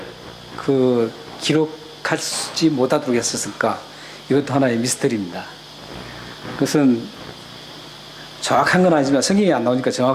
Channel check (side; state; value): both; identical; correlation 1.00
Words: 기록하지 못하도록 했었을까? 이것도 하나의 미스터리입니다. 그것은 정확한 건 아니지만, 성경이 안 나오니까